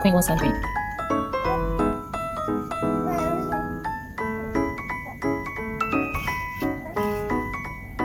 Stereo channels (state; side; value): identical; both; correlation 1.00